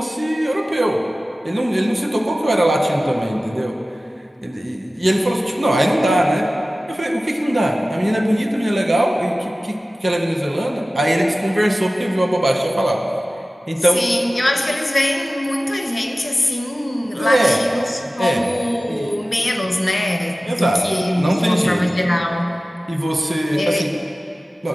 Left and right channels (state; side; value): normal; both; correlation 0.96